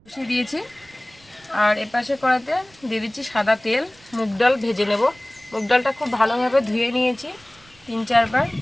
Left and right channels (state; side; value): noise; right; rumble, 28 dB below the sound